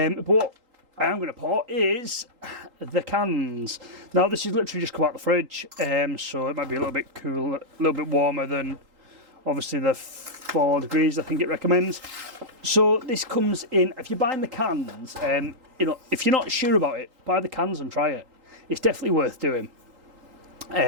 what I am going to pour is the cans. Now this is literally just come out the fridge, so it might be a little bit cool, a little bit warmer than obviously the 4 degrees I think it recommends. So this comes in, if you're buying the cans, you know, if you're not sure about it, buy the cans and try it. It's definitely worth doing.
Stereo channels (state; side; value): late; left; 3.8 ms